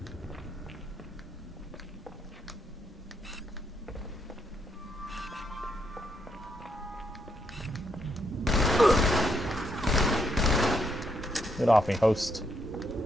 Get off me, host.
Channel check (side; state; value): both; normal; correlation 0.76